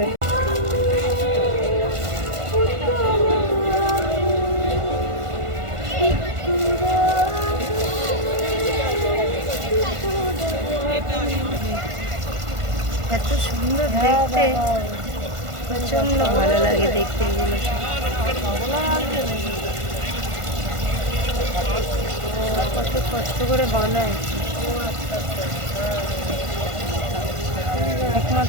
এত সুন্দর দেখতে, প্রচন্ড ভালো লাগে দেখতে এগুলো। কত কষ্ট করে বানায়,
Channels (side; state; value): left; late; 1.5 ms